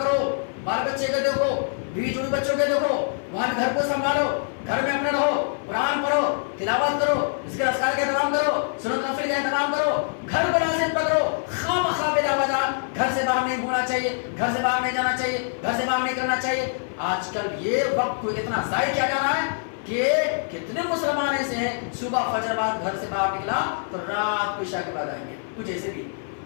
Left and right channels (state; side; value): silent; right; 58 dB below the other